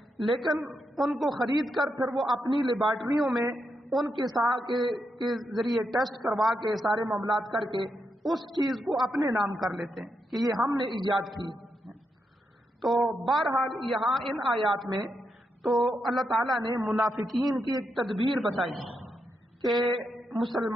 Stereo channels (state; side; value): normal; both; correlation 0.83